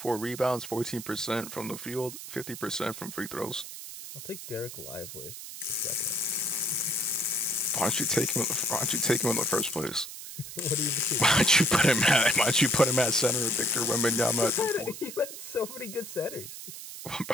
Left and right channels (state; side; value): noise; right; hiss, 11 dB below the sound